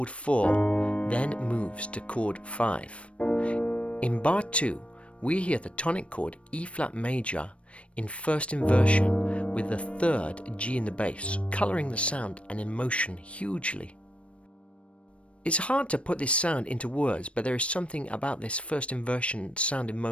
4, then moves to chord 5. In bar 2, we hear the tonic chord E-flat major in first inversion with the 3rd G in the bass, colouring the sound and emotion hugely. It's hard to put this sound into words, but there is something about this first inversion sound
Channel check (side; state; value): right; late; 0.061 ms